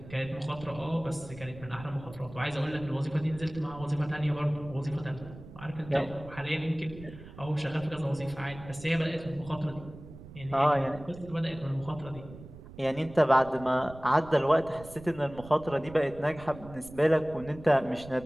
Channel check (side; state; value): right; noise; rumble, 16 dB below the sound